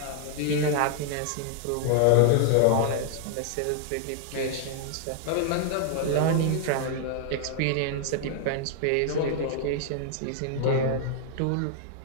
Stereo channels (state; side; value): different; both; correlation 0.00